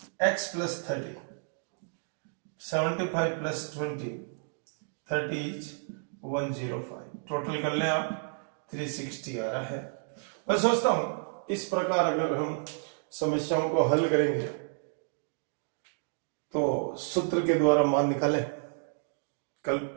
x plus 30 75 plus 20 30 is 105। Total कर लें आप 360 आ रहा है। मैं सोचता हूं इस प्रकार अगर हम समस्याओं को हल करेंगे तो सूत्र के द्वारा मान निकालें। कल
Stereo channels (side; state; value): left; silent; digital silence